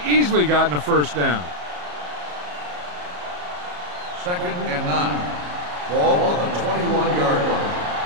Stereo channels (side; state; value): left; late; 34 ms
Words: easily gotten a first down. 2nd and 9. Ball on the 21-yard line.